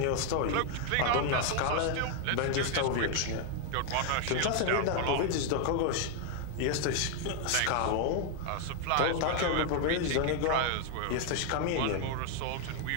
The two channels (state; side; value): different; both; correlation 0.00